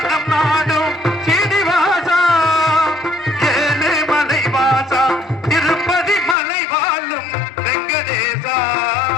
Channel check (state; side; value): drops out; right; at 6.4 s